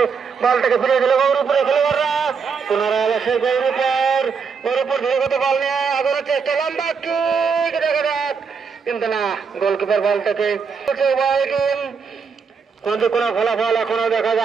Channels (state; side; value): quieter; left; 5.7 dB